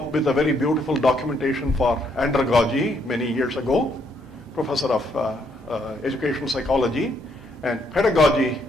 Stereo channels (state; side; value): normal; both; correlation 0.72